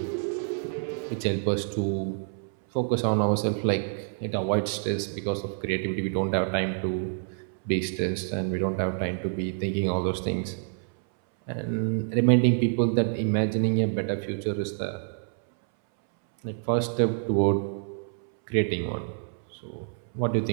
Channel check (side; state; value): left; silent; 60 dB below the other